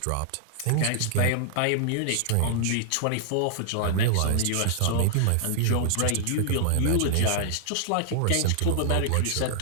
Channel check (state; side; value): different; both; correlation 0.00